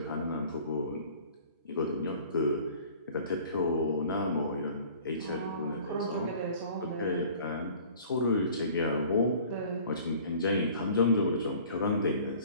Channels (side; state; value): both; inverted; correlation -0.49